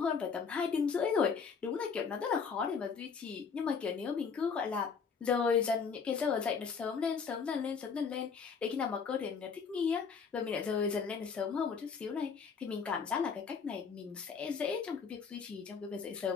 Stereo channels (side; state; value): right; quieter; 5.8 dB